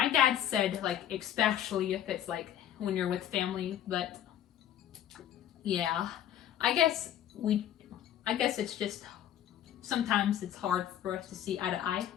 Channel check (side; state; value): right; quieter; 10.9 dB